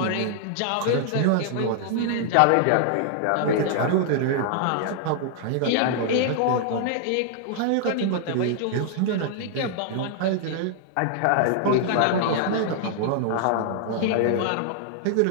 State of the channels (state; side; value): different; both; correlation 0.00